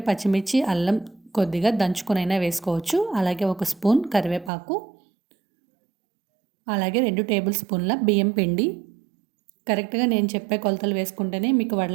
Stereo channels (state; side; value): drops out; left; at 4.5 s